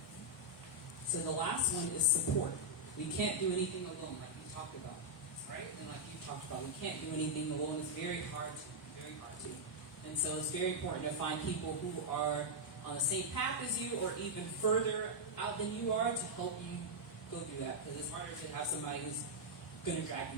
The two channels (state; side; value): normal; both; correlation -0.04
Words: So the last one is support. We can't do anything alone, like you talked about. Right? And like you talked about, we can't do anything alone. It's very hard to. And so it's very important to find people who are on the same path as you or even further out than you are to help you go through that. Because it's harder to have somebody who's going to drag